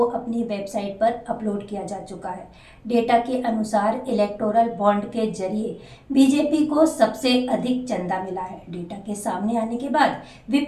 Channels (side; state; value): both; identical; correlation 1.00